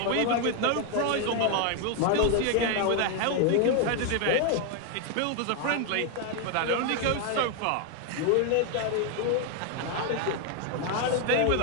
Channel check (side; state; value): both; different; correlation 0.01